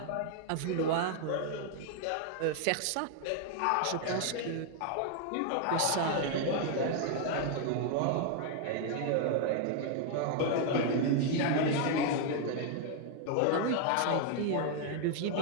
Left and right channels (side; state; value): both; different; correlation 0.00